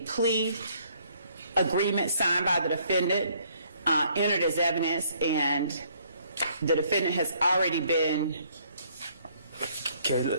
plea agreement signed by the defendant, entered as evidence, and the defendant has already given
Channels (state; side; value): inverted; both; correlation -0.64